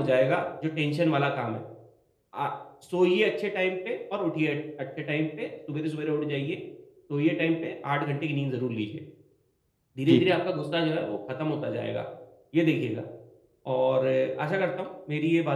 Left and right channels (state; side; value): identical; both; correlation 1.00